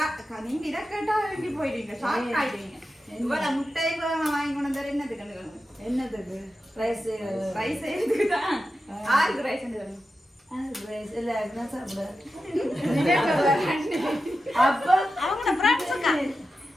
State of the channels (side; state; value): both; normal; correlation 0.91